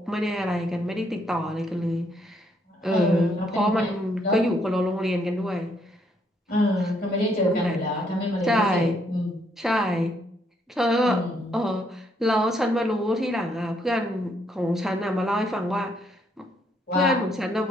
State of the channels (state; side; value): normal; both; correlation 0.72